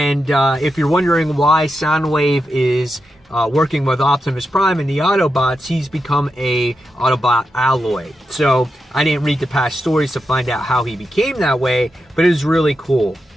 if you're wondering why Soundwave is working with Optimus Prime and the Autobots, he's become a Autobot alloy. So I didn't read the past stories to find out how he became that way, but it was really cool.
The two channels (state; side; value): normal; both; correlation 0.87